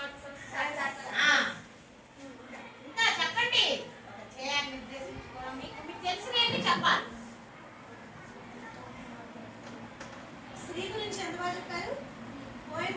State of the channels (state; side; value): identical; both; correlation 1.00